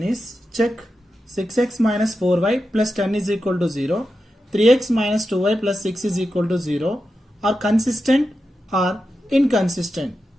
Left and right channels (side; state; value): both; normal; correlation 0.90